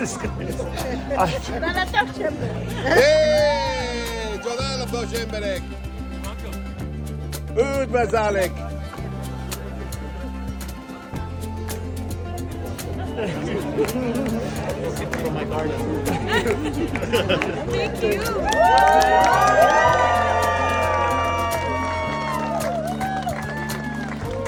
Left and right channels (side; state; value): both; identical; correlation 1.00